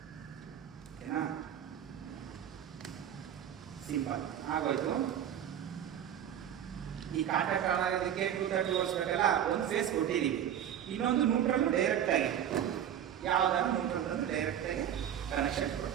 ಓಕೆನಾ? ಸಿಂಪಲ್ ಆಗೋಯ್ತು. ಈ ಕಾಂಟ್ಯಾಕ್ಟ್ ಆನ್ ಆಗೋದಕ್ಕೆ 230 ವೋಲ್ಟ್ಸ್ ಬೇಕಲ್ಲ, ಒಂದು ಫೇಸ್ ಕೊಟ್ಟಿದ್ದೀವಿ. ಇನ್ನೊಂದು ನ್ಯೂಟ್ರಲ್ ಡೈರೆಕ್ಟಾಗಿ ಯಾವುದಾದ್ರು ನ್ಯೂಟ್ರಲ್ ತಂದು ಡೈರೆಕ್ಟಾಗಿ ಕನೆಕ್ಷನ್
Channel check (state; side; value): quieter; left; 10.0 dB